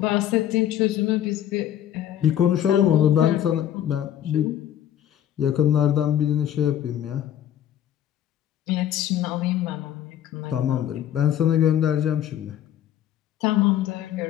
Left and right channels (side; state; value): right; quieter; 10.9 dB